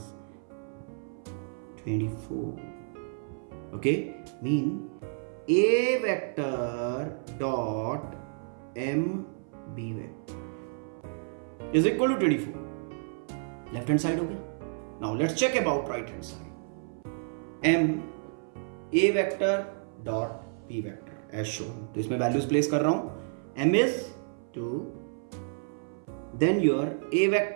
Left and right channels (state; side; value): silent; left; 56 dB below the other